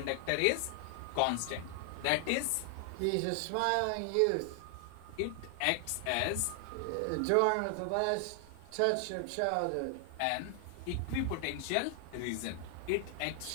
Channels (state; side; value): different; both; correlation 0.00